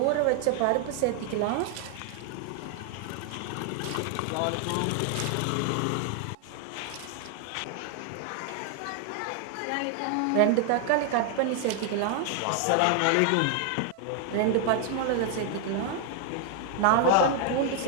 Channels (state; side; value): different; both; correlation 0.00